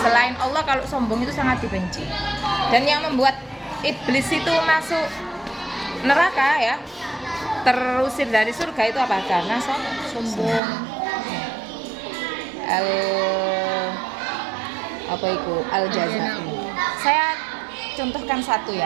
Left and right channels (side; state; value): left; drops out; at 10.6 s